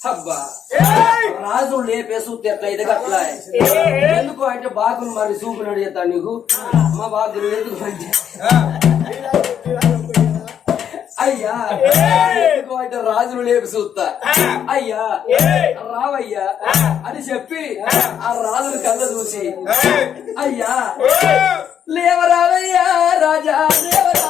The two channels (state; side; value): quieter; right; 8.9 dB